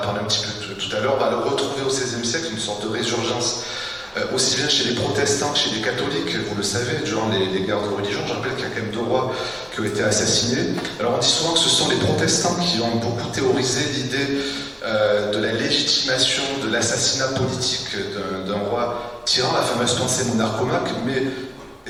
un petit peu tout à l'heure, on va le retrouver au XVIe siècle, une sorte de résurgence, aussi bien chez les protestants que chez les catholiques, vous le savez, durant les guerres de religion. Je rappelle qu'il y a quand même 2 rois qui ont été assassinés. Alors on dit souvent que ce sont les protestants qui ont beaucoup théorisé l'idée de la légitimation de l'assassinat politique d'un roi tyran, la fameuse pensée monarchomaque, mais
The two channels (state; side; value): identical; both; correlation 1.00